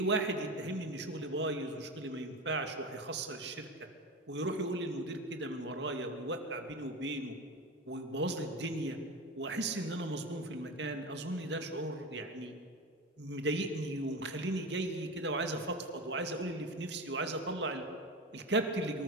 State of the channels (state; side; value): normal; both; correlation 0.25